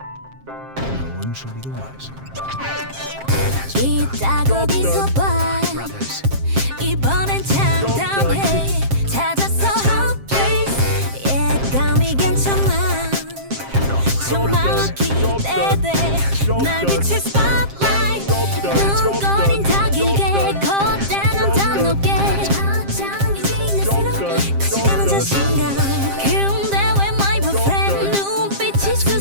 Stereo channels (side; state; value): left; late; 7.5 ms